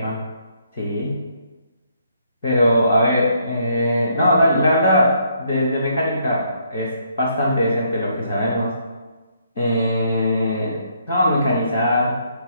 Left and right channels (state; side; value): inverted; both; correlation -0.71